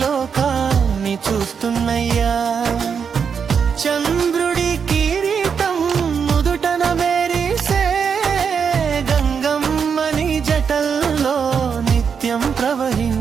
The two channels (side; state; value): left; quieter; 6.5 dB